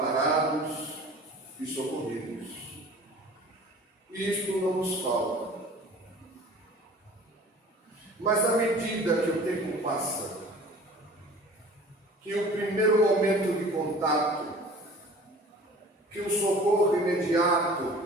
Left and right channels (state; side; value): normal; both; correlation 0.45